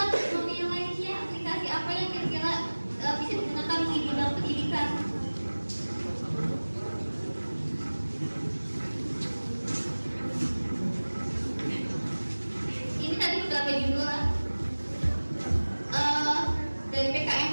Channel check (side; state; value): both; inverted; correlation -1.00